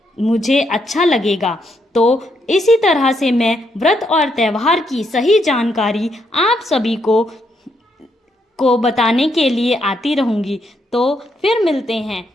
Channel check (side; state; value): both; normal; correlation 0.77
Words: मुझे अच्छा लगेगा। तो इसी तरह से मैं व्रत और त्यौहार की सही जानकारी आप सभी को बताने के लिए आती रहूँगी। तो फिर मिलते हैं।